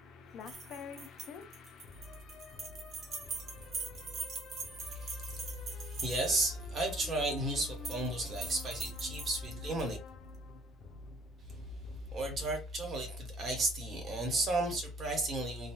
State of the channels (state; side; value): normal; both; correlation 0.59